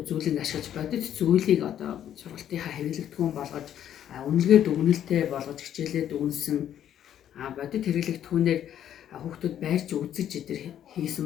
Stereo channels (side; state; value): right; quieter; 10.4 dB